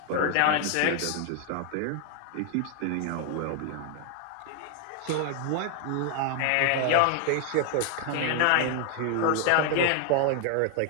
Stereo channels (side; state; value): both; different; correlation 0.00